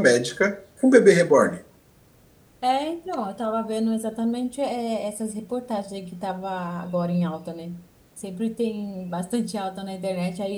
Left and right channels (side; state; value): both; identical; correlation 1.00